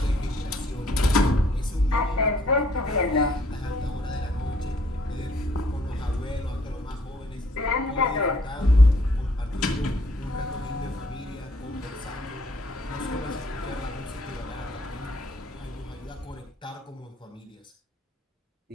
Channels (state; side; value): normal; both; correlation 0.64